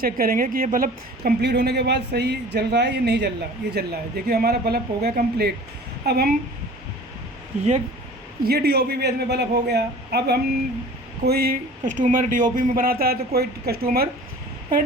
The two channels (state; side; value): normal; both; correlation 0.44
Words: करेंगे कि ये बल्ब कंप्लीट होने के बाद सही जल रहा है या नहीं जल रहा। ये जल रहा है, देखिए हमारा बल्ब हो गया कंप्लीट। अब हम ये DOP बेस में बल्ब हो गया। अब हम कोई कस्टमर DOP में बनाता है तो कोई कस्टमर